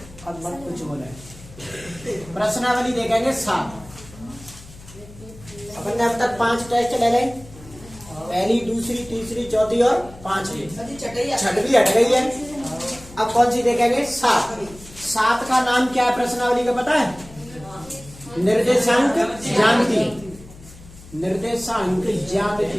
अब मत कुछ बोले। प्रश्नावली देखेंगे 7। अपन ने अब तक 5 टेस्ट ले लें, पहली, दूसरी, तीसरी, चौथी और 5वीं, छठवीं हट गई है। अब कौन सी देखेंगे? 7। 7 का नाम क्या है प्रश्नावली का पता है? निर्देशांक ज्यामिति। निर्देशांक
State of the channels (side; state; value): left; noise; hum, 19 dB below the sound